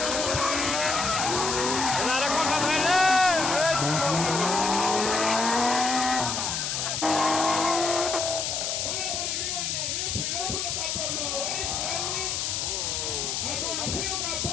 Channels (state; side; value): noise; left; hiss, 1 dB below the sound